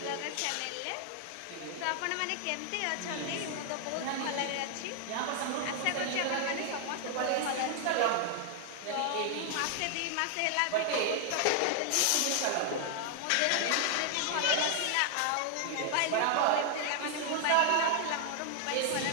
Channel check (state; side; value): different; both; correlation 0.00